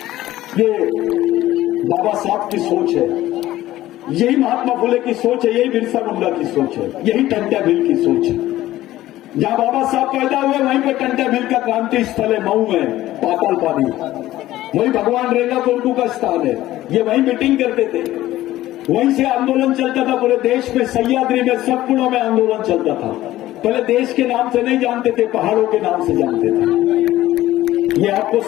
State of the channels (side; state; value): right; quieter; 15.2 dB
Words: ये बाबा साहब की सोच है, यही महात्मा फुले की सोच है, यही बिरसा मुंडा की सोच है, यही टंट्या भील की सोच है। जहां बाबा साहब पैदा हुए वहीं पर टंट्या भील का क्रांति स्थल है, मऊ में पाताल पानी। वही भगवान रेगा कोरकू का स्थान है। ये वहीं मीटिंग करते थे, वहीं से आंदोलन चलता था पूरे देश में। सह्याद्री में सतपुड़ों में आंदोलन चलता था। पहले देश के नाम से नहीं जानते थे, पहाड़ों के नाम से जानते थे। ये आपको